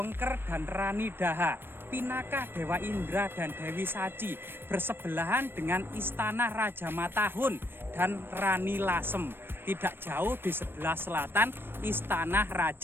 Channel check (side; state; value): left; late; 0.10 ms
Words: dan Rani Daha, Pinaka Dewa Indra dan Dewi Saci bersebelahan dengan istana Raja Matahun dan Rani Lasem. Tidak jauh di sebelah selatan istana